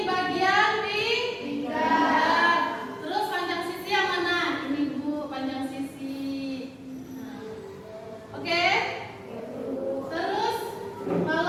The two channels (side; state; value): both; identical; correlation 1.00